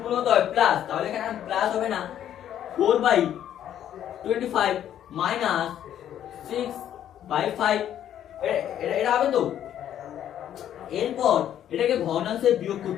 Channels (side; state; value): right; quieter; 10.7 dB